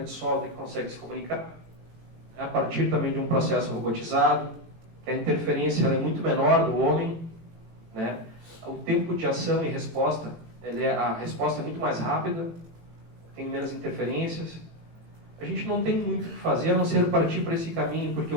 de solda que consegue se comunicar, a partir também de um processo robotizado, que a interferência ela é muito menor do homem, né? O tempo de ação e resposta, a resposta é muito mais rápida, tem menos interferências. A gente não tem muito o que fazer a não ser partir para esse caminho, porque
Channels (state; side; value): late; left; 18 ms